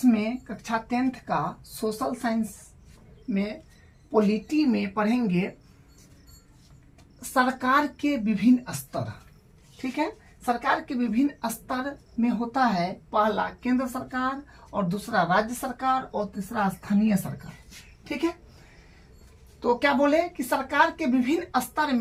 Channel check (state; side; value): identical; both; correlation 1.00